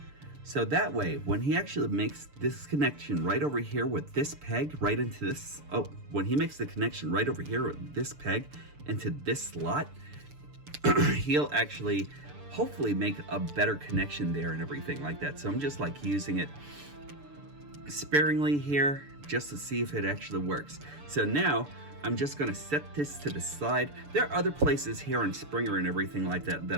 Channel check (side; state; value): left; late; 6.9 ms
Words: So that way, when he actually makes this connection right over here with this peg right into this, when he makes the connection right over here with this peg into this slot, he'll actually hopefully make a better connection there and everything like that. So I'm just like using it sparingly here just to see if it actually works. So now I'm just gonna set this to the side. There are other places here on Springer and everything like that